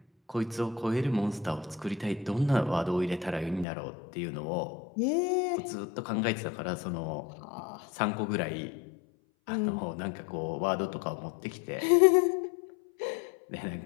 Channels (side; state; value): right; drops out; at 3.7 s